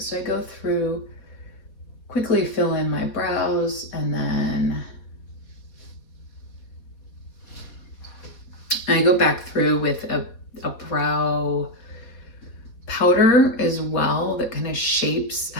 I go through, quickly fill in my brows, and then I go back through with a brow powder as well that kind of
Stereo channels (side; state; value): right; late; 4.0 ms